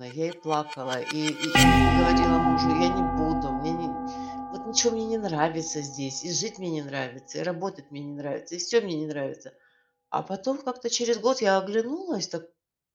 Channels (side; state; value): both; identical; correlation 1.00